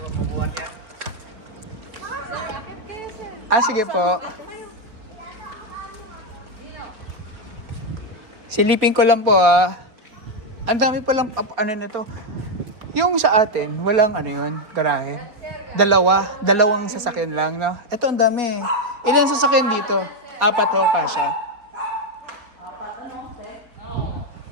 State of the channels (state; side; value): late; left; 4.2 ms